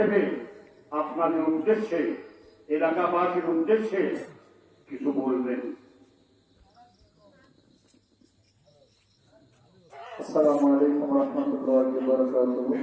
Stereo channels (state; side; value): identical; both; correlation 1.00